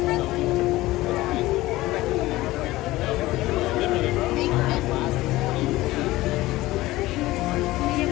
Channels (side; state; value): right; quieter; 18.0 dB